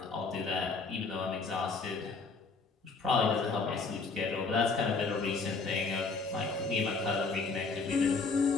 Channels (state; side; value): quieter; right; 4.3 dB